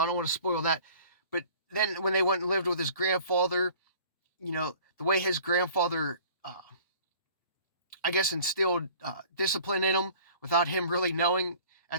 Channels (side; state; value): both; inverted; correlation -0.49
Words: I don't want to spoil that. But then when they went and lived with his grandfather, the way his grandfather, I guess, instilled discipline in him without him really knowing